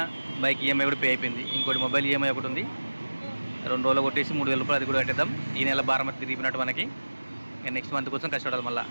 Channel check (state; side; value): inverted; both; correlation -1.00